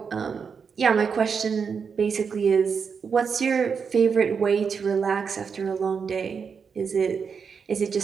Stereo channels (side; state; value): left; quieter; 6.1 dB